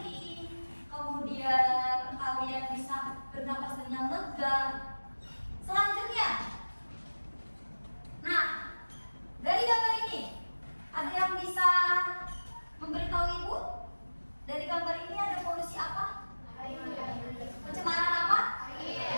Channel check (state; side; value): inverted; both; correlation -1.00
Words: kemudian kalian bisa bernapas dengan lega. Selanjutnya, nah, dari gambar ini ada yang bisa memberitahu ibu? Dari gambar ini ada polusi apa? Pencemaran apa?